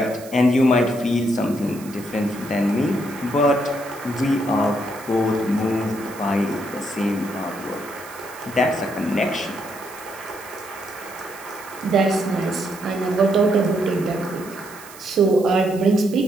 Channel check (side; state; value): right; noise; hiss, 18 dB below the sound